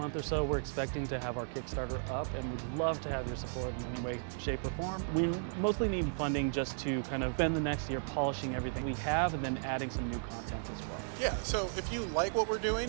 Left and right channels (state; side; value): silent; left; digital silence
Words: or so, we're expecting to have our Kickstarter up, and we'd love to have your support in any way, shape, or form. We mostly need funding just to kind of spend the next year polishing everything we have and then adding some new content as well. Yeah, so if you like what we're doing,